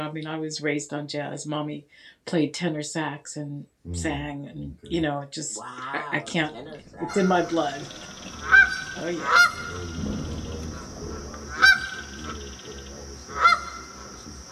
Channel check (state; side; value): identical; both; correlation 1.00